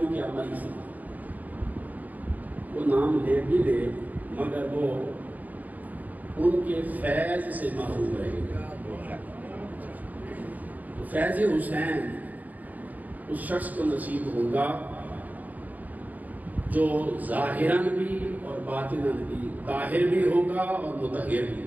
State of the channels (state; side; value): late; left; 0.080 ms